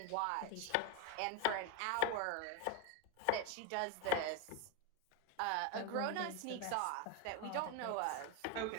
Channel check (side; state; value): both; different; correlation 0.02